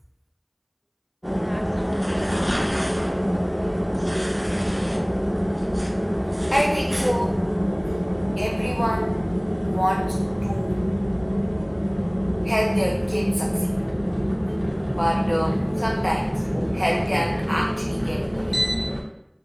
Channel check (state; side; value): identical; both; correlation 1.00